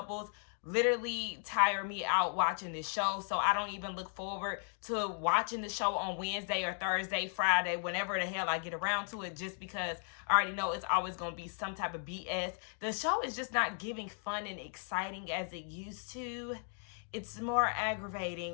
literally tire me out watching this show. So I don't even look forward to watching the show on Wednesday or Thursday, Friday, whenever the hell I get around to it, just because I already know it's always going to be some type of BS. The show is just not giving fun and exciting as it used to. It's more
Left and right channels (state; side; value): silent; right; 54 dB below the other